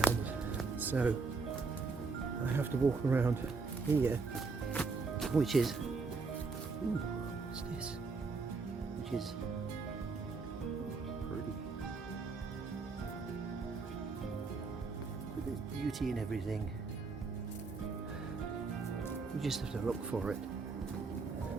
so I have to walk around here, which is, ooh, what's this? Which is pretty. But there's beauty in everything. You just have to look for it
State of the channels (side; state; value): left; quieter; 4.4 dB